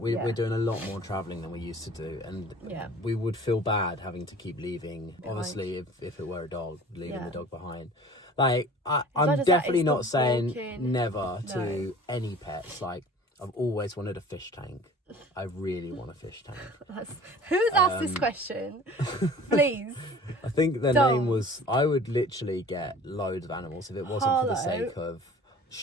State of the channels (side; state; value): both; normal; correlation 0.45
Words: we're doing a lot more travelling than we used to do. And we would feel bad having to keep leaving. Behind. Obviously, if it were a dog, leaving the dog behind. Like, I'm definitely not saying never to any pets. Like, I've always wanted a fish tank. I really want a fish tank. Who's asked this question? Please. I think the name was, I would literally get loads of animals if it wasn't for the sake of